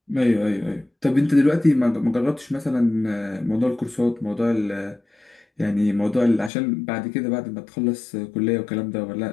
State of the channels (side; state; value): right; drops out; at 6.5 s